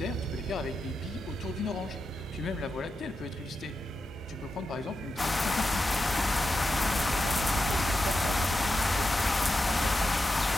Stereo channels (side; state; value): both; normal; correlation 0.89